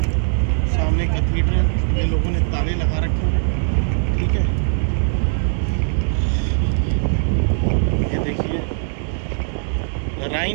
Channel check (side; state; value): left; silent; digital silence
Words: सामने कैथीड्रल, ये लोगों ने ताले लगा रखे हैं। ठीक है, ये देखिए